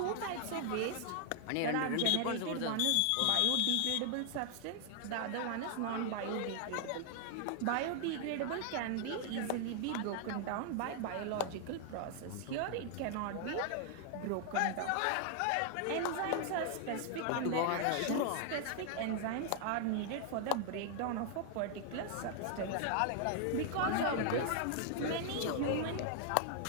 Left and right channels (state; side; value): different; both; correlation 0.00